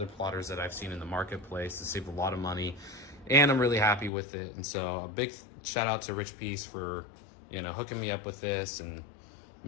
plotters that I've seen in the marketplace. To save a lot of money, and I'm really happy with it. And so a big shout out to Richpeace for, you know, hooking me up with this and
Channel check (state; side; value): drops out; right; at 4.1 s